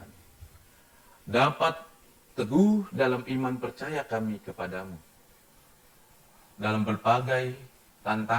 dapat teguh dalam iman percaya kami kepadamu. Dalam berbagai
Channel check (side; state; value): both; identical; correlation 1.00